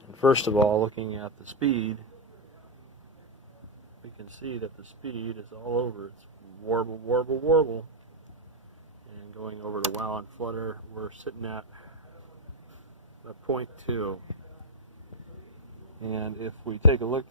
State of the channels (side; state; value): both; normal; correlation 0.02